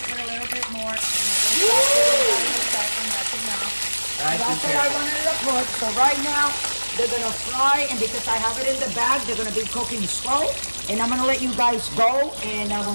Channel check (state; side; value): inverted; both; correlation -1.00